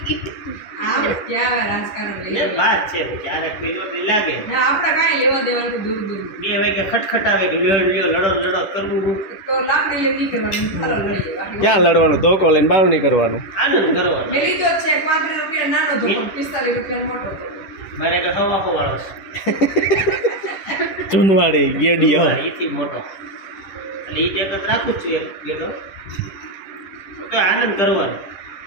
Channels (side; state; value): right; late; 10 ms